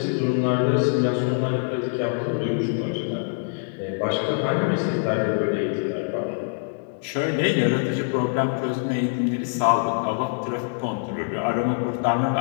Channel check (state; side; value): silent; right; digital silence